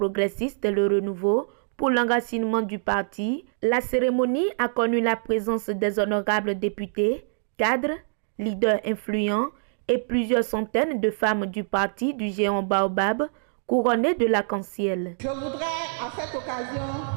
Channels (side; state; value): left; silent; digital silence